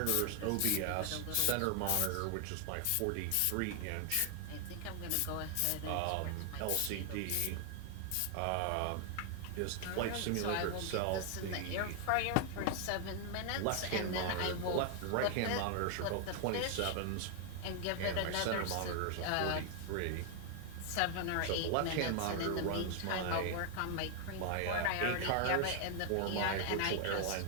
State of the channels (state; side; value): different; both; correlation 0.00